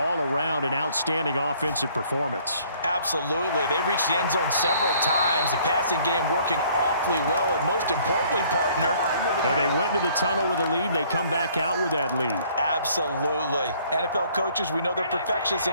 around an outstanding offensive performance. Absolutely. They reached the end zone several times. The passing game working awfully well, and most importantly, partner. And they went into the tunnel with a lead. They come back out with that lead. Absolutely. NFL coaches, we know they're perfectionists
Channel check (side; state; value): both; inverted; correlation -0.59